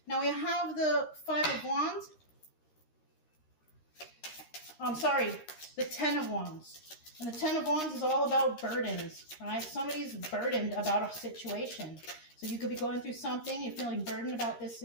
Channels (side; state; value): right; late; 13 ms